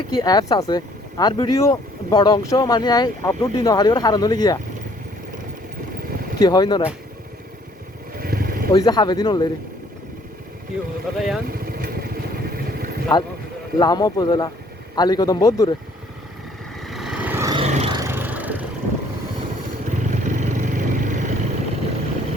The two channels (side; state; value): both; normal; correlation 0.61